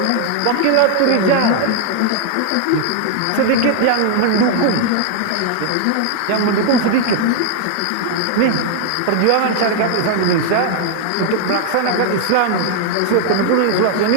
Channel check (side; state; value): both; different; correlation 0.00